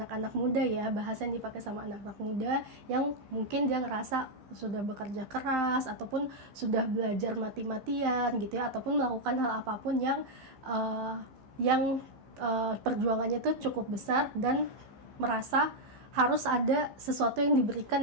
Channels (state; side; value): late; left; 15 ms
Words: muda ya, bahasa yang dipakai sama anak-anak muda yang mungkin dia ngerasa sudah bekerja keras ataupun sudah belajar mati-matian gitu ya, ataupun melakukan hal apapun yang perjuangannya tuh cukup besar dan merasa harus ada sesuatu yang diberikan